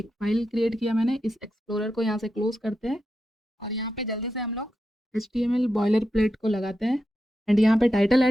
फ़ाइल क्रिएट किया मैंने। इस एक्सप्लोरर को यहाँ से क्लोज़ करते हैं और यहाँ पे जल्दी से हम लोग HTML बॉयलर प्लेट को लगाते हैं एंड यहाँ पे टाइटल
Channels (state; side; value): normal; both; correlation 0.87